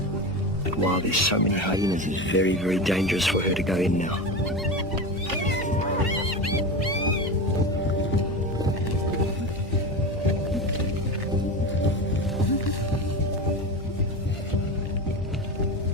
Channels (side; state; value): both; normal; correlation 0.23